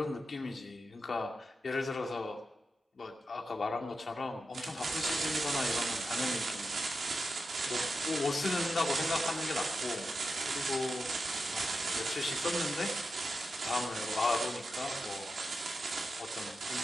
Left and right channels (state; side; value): normal; both; correlation 0.89